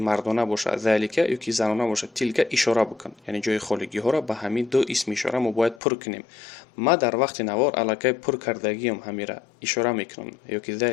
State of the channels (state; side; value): drops out; right; at 5.8 s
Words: باشه ذالکه یا که زنانه باشه تلک اشاره بکن. یعنی جای خالی ها را به همین دو اسم اشاره ما باید پر کنیم. ما در وقت نوار علاقه پر کردگی هم همین را اشاره میکنم، یا که